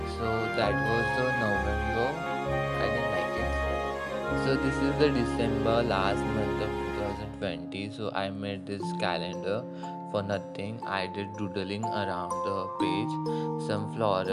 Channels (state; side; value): identical; both; correlation 1.00